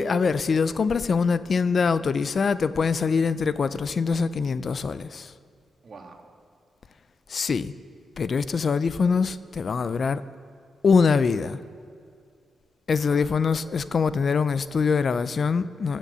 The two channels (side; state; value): right; quieter; 4.9 dB